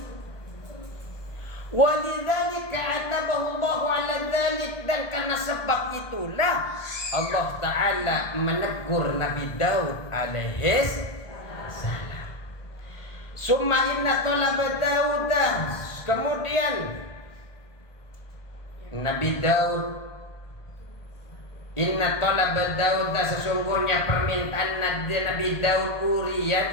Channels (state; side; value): late; right; 1.7 ms